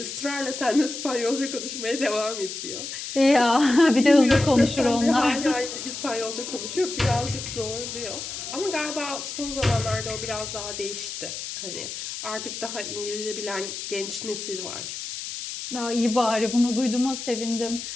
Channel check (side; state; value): left; noise; hiss, 7 dB below the sound